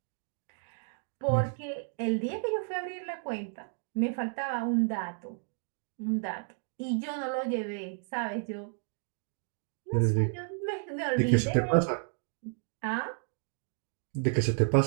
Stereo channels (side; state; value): left; silent; 56 dB below the other